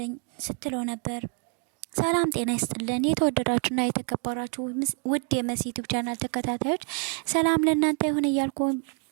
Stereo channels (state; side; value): quieter; left; 35.7 dB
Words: ስትለው ነበር። ሰላም ጤና ይስጥልን የተወደዳችሁና የተከበራችሁ ውድ የመሲ ዩቲዩብ ቻናል ተከታታዮች ሰላም ለእናንተ ይሁን እያልኩ